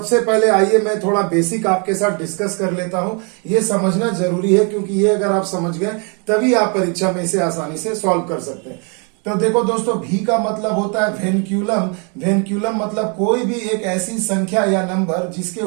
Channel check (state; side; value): quieter; left; 35.9 dB